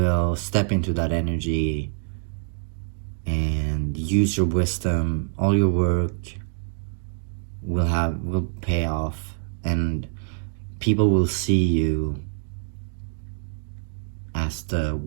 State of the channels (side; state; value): left; silent; digital silence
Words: step into that energy and use your wisdom. All your work will pay off, and people will see you as the